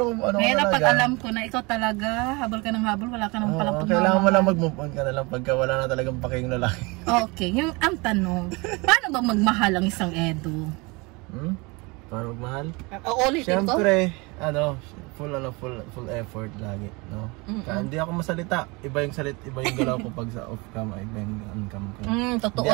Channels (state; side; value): quieter; left; 26.7 dB